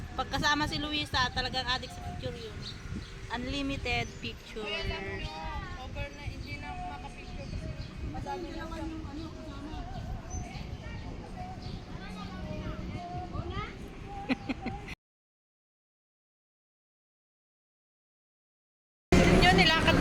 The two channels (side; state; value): both; identical; correlation 1.00